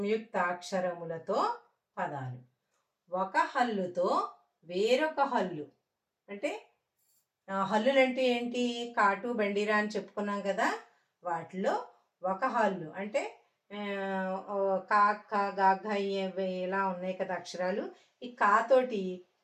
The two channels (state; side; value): identical; both; correlation 1.00